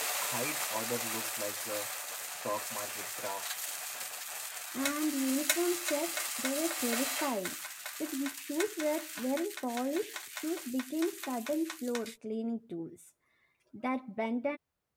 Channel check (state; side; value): identical; both; correlation 1.00